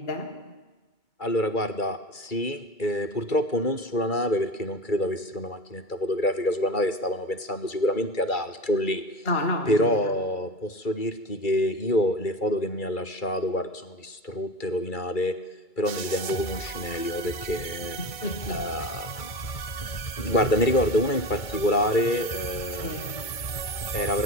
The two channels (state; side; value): late; right; 2.2 ms